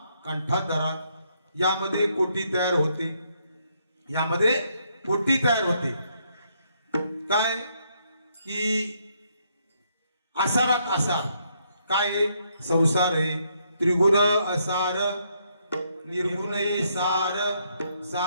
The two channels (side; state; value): both; inverted; correlation -0.74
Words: कंठात धरा. यामध्ये कोटी तयार होते, यामध्ये कोटी तयार होते. काय की आसारात आसार काय आहे? संसार आहे. त्रिगुण असार निर्गुण सार,